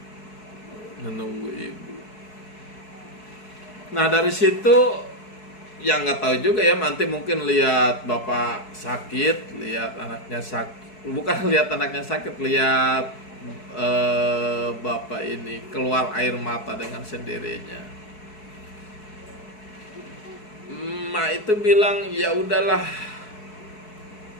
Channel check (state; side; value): late; right; 4.6 ms